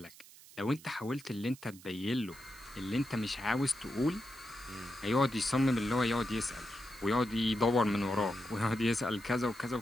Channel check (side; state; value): right; noise; hiss, 20 dB below the sound